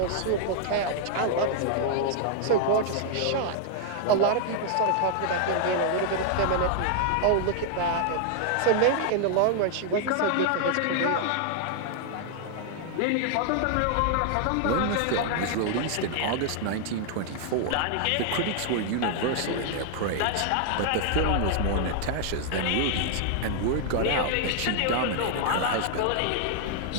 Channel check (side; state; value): both; different; correlation 0.00